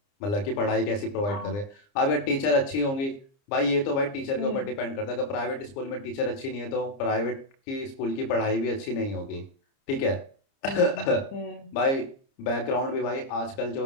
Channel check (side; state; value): right; late; 30 ms